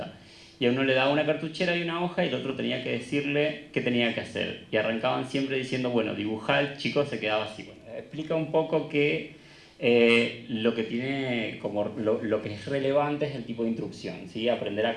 Y a uno le daba una cartuchera y una hoja y el otro tenía que decirle qué tenía que hacer. Y arrancaban siempre diciendo, bueno, dibujá, el chico se quedaba así. Bueno, explica un poco que lo que tiene como lo que es relevante es el tipo de instrucción, ¿sí? Aprender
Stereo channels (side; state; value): both; identical; correlation 1.00